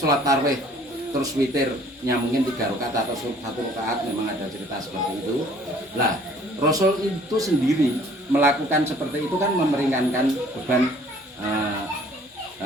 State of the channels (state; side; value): normal; both; correlation 0.55